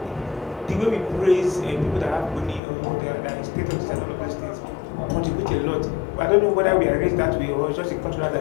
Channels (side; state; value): right; drops out; at 2.6 s